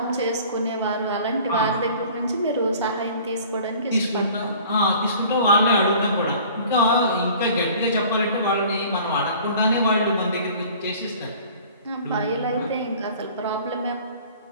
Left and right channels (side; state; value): both; inverted; correlation -0.48